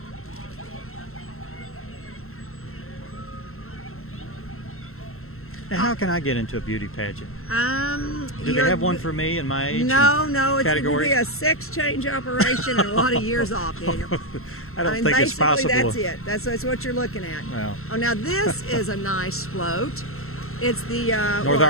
Now, how can I get into a beauty pageant? Do they you're- have one for me in my age? No, it's going to category? be a sex change operation and a lot of years off, Daniel. I don't mean, think it's basically, possible. that's it. That's what you're looking at. Well. Oh, now this is a nice float. It's the North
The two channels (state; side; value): late; right; 0.62 ms